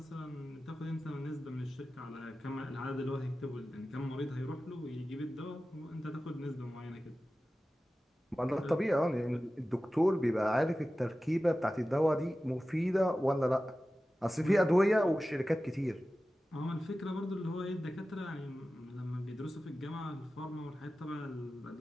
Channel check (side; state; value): both; normal; correlation 0.95